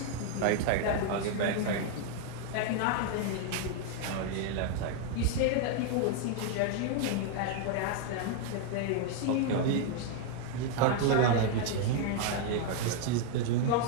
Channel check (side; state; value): both; different; correlation 0.00